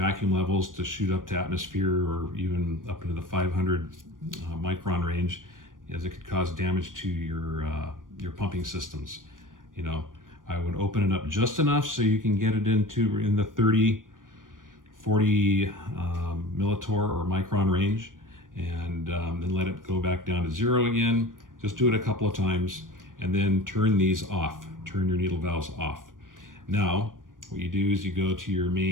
levels to shoot up to atmosphere or even up into the 500 micron range, as it could cause damage to your pumping systems. I would open it up just enough so you can get it in the 30, 40 millitorr or micron range, and then let it go back down to 0 again. Just do it a couple of times, and then turn these off. Turn your needle valves off. Now, what you do is you go to your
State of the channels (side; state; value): left; late; 0.89 ms